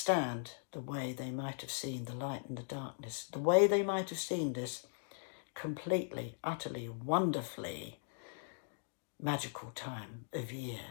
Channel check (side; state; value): right; silent; digital silence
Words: the way they might have seen the light and the darkness, the way they might have seen this completely, utterly, wonderfully magical time of year.